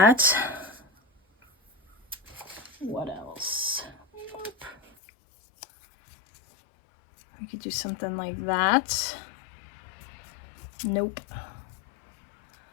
What else? Nope. I could do something like that. Nope.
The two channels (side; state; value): right; drops out; at 4.9 s